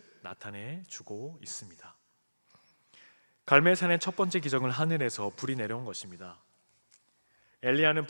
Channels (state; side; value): inverted; both; correlation -1.00